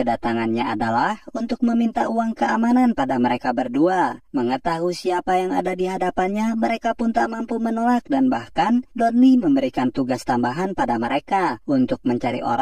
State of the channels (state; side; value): identical; both; correlation 1.00